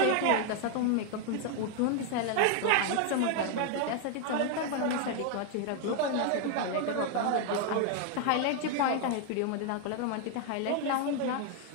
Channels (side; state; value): both; different; correlation 0.01